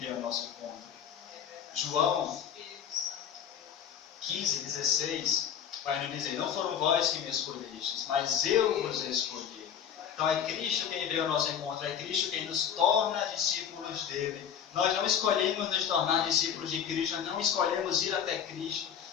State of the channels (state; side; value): quieter; right; 8.6 dB